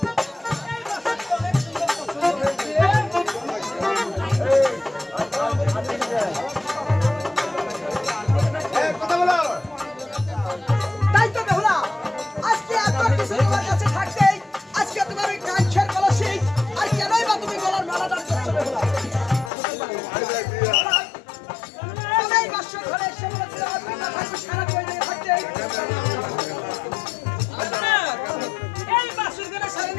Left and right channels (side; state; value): right; drops out; at 19.5 s